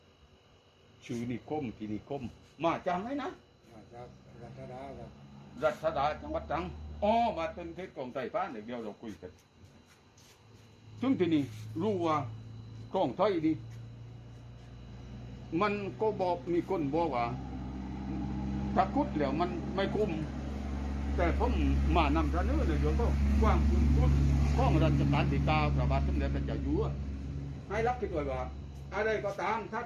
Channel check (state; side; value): identical; both; correlation 1.00